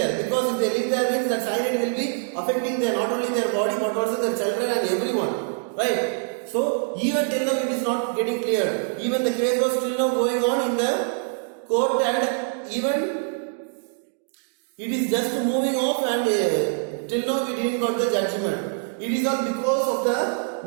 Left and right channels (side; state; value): left; silent; digital silence